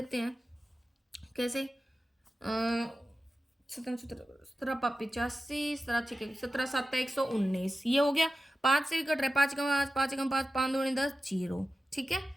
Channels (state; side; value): normal; both; correlation 0.93